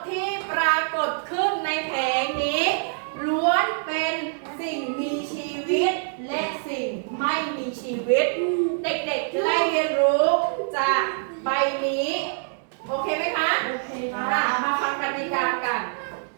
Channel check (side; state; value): left; silent; digital silence